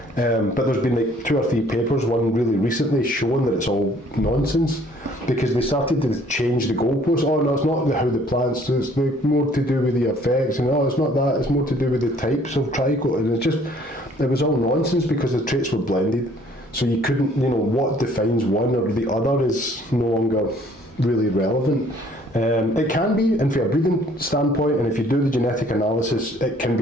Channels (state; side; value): normal; both; correlation 0.58